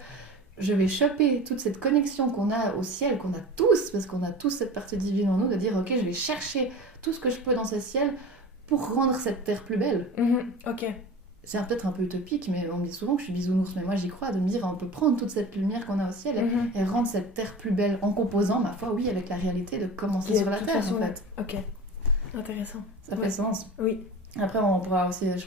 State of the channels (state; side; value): normal; both; correlation 0.35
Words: je vais choper toute cette connexion qu'on a au ciel, qu'on a tous, parce qu'on a tous cette partie divine en nous, de dire, ok, je vais chercher tout ce que je peux dans ce ciel pour rendre cette terre plus belle. Ok. C'est peut-être un peu utopique, mais on me dit souvent que je suis bisounours, mais moi j'y crois, de me dire on peut prendre toute cette lumière qu'on a au ciel et rendre cette terre plus belle en composant, ma foi, oui, avec la réalité de commencer sur la terre en fait. Ok, intéressant. Ça fait sens. Oui. Après on pourra aussi